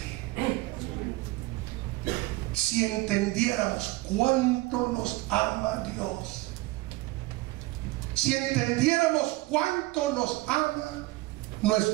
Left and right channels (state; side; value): quieter; left; 20.1 dB